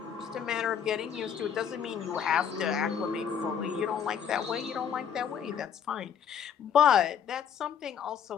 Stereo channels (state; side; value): quieter; right; 8.2 dB